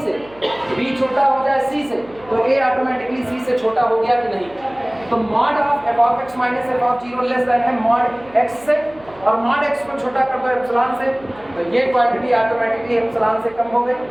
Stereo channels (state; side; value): noise; right; hum, 25 dB below the sound